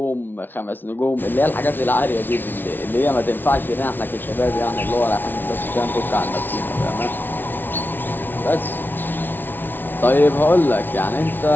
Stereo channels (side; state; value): right; late; 0.094 ms